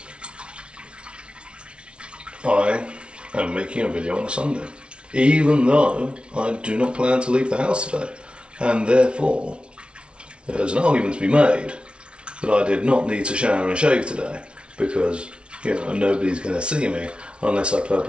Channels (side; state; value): left; late; 0.058 ms